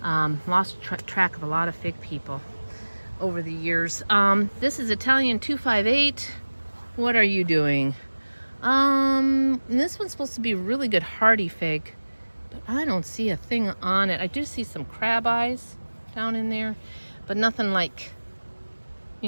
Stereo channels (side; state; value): both; inverted; correlation -1.00